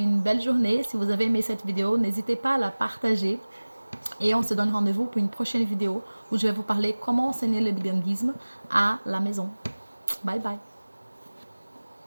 belle journée. Si vous avez aimé cette vidéo, n'hésitez pas à la partager Et on se donne rendez-vous pour une prochaine vidéo où je vais vous parler comment enseigner le bilinguisme à la maison. Bye bye.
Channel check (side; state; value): both; inverted; correlation -1.00